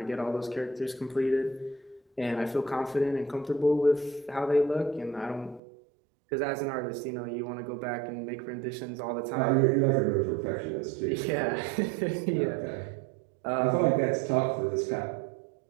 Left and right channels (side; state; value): left; drops out; at 5.6 s